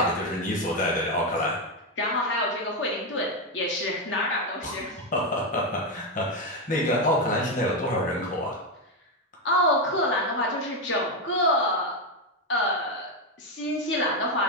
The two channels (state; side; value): normal; both; correlation 0.07